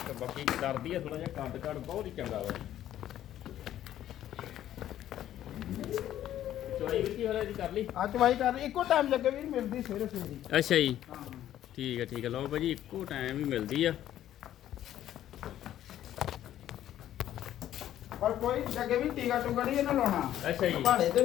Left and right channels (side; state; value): right; quieter; 12.1 dB